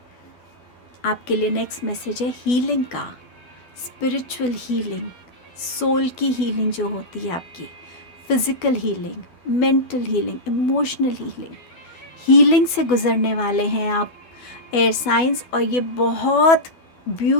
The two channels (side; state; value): right; late; 12 ms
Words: आपके लिए नेक्स्ट मैसेज है हीलिंग का, स्पिरिचुअल हीलिंग, सोल की हीलिंग जो होती है आपकी, physical healing, mental healing, emotional healing, healing से गुज़रने वाले हैं आप एयर साइंस। और ये बहुत